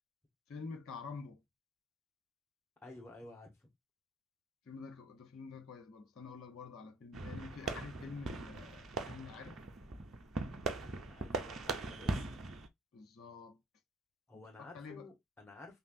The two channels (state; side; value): normal; both; correlation 0.54